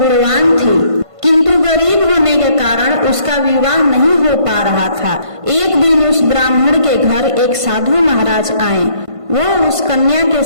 थी, किंतु गरीब होने के कारण उसका विवाह नहीं हो पा रहा था। एक दिन उस ब्राह्मण के घर एक साधु महाराज आए। वह उस कन्या के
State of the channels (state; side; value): late; left; 1.5 ms